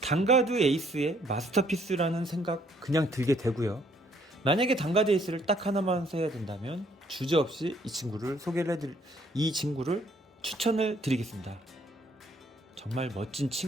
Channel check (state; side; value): normal; both; correlation 0.65